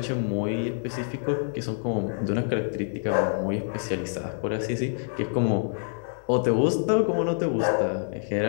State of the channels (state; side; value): silent; right; 60 dB below the other